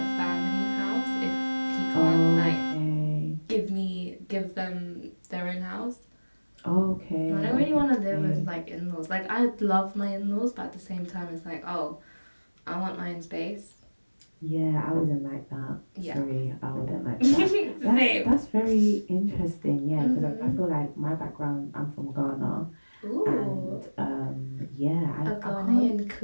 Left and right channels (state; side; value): inverted; both; correlation -1.00